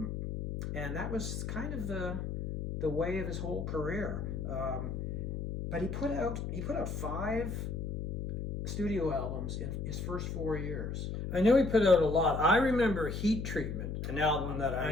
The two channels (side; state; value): left; noise; hum, 4 dB below the sound